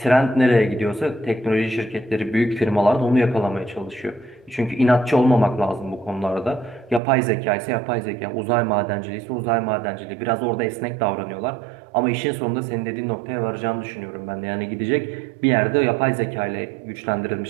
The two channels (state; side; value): drops out; left; at 7.0 s